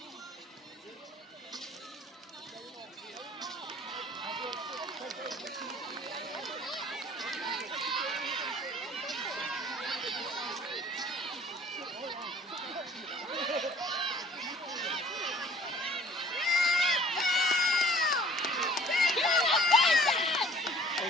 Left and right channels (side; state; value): both; normal; correlation 0.52